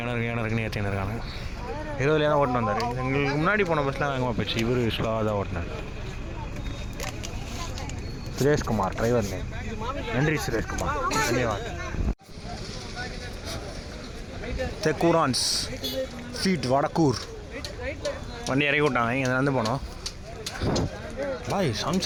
ஏற்றின்னு இருக்காங்க. 20 தான் ஓட்டின்னு வந்தார். எங்களுக்கு முன்னாடி போன பஸ்லாம் வேகமாக போச்சு. இவர் ஸ்லோவாக தான் ஓட்டினார். Sureshkumar driver name. நன்றி சுரேஷ்குமார், தன்யவாத். தெக்கூரான்ஸ் ஃபீட் வடக்கூர் வண்டி இறக்கி விட்டாங்க. இங்கே நடந்து போனோம். பாய்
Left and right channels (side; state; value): both; identical; correlation 1.00